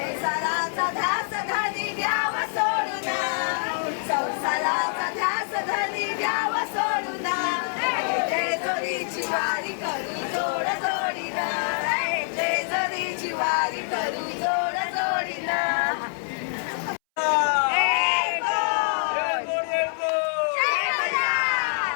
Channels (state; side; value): silent; right; 61 dB below the other